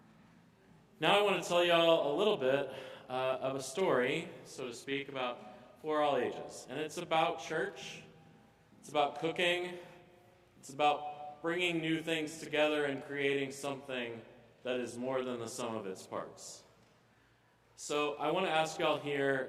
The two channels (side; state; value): both; identical; correlation 1.00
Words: Now I want to tell y'all a little bit of a story, so to speak, for all ages. And it's about church, it's about cooking, it's about bringing new things together and creating something that is more than the sum of its parts. So I want to ask y'all here,